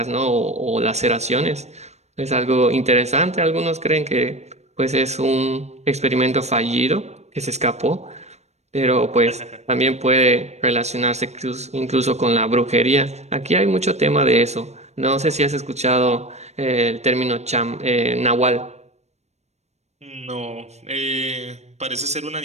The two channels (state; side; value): late; left; 0.32 ms